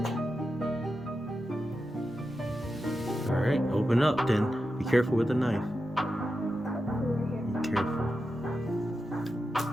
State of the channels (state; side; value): normal; both; correlation 0.90